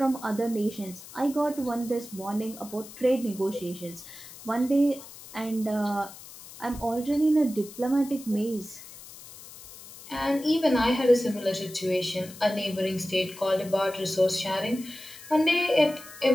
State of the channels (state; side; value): noise; left; hiss, 17 dB below the sound